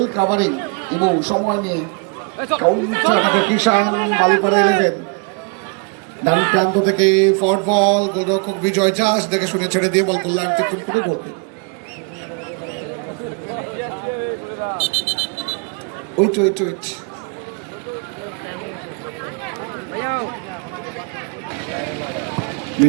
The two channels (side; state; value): left; quieter; 35.5 dB